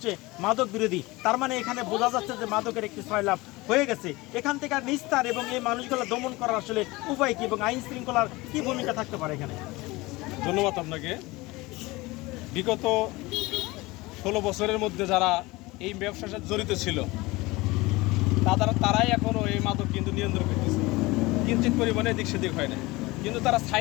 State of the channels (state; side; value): quieter; right; 21.7 dB